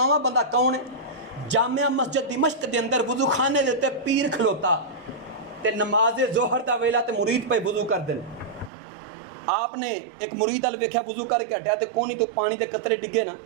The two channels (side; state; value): left; drops out; at 8.7 s